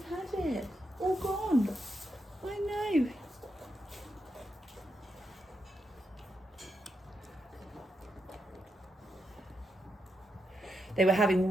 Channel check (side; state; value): both; normal; correlation 0.84